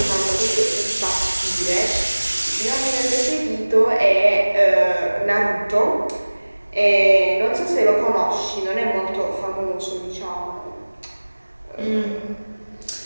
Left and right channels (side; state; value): both; inverted; correlation -1.00